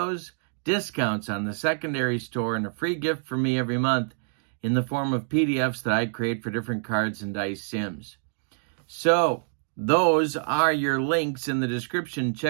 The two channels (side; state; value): left; silent; digital silence